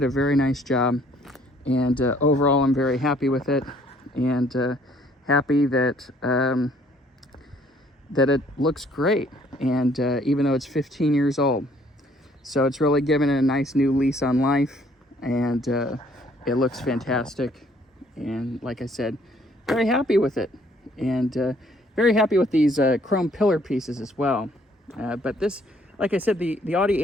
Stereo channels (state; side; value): normal; both; correlation 0.62